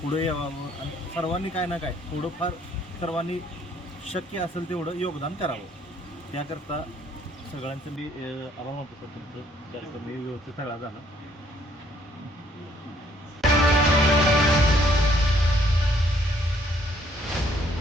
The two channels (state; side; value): normal; both; correlation 0.65